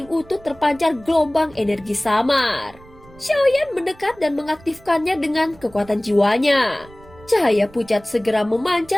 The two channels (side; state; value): right; noise; rumble, 23 dB below the sound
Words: utuh terpancar gelombang energi samar. Xiaoyan mendekat dan mengaktifkannya dengan kekuatan jiwanya. Cahaya pucat segera